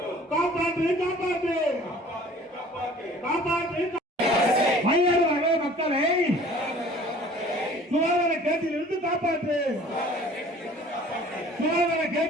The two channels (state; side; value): normal; both; correlation 0.49